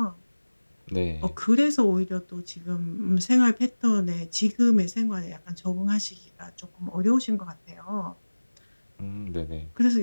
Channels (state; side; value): inverted; both; correlation -1.00